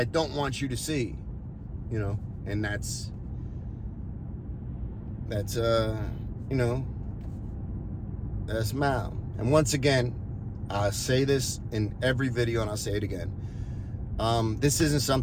don't want you to see, you know. And that's you know, that's Mal. And once again, I say this in every video, and I'll say it again. This isn't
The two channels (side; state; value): both; identical; correlation 1.00